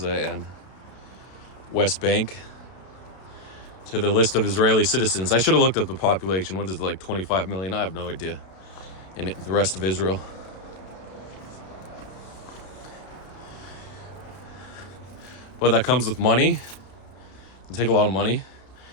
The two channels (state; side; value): late; right; 32 ms